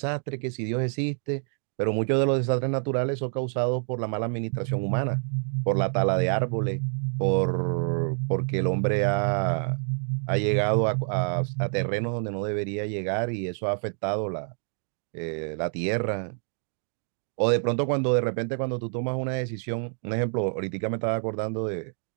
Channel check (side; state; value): left; silent; 60 dB below the other